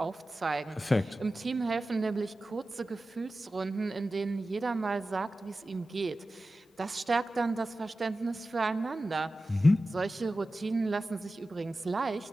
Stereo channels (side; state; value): both; normal; correlation 0.94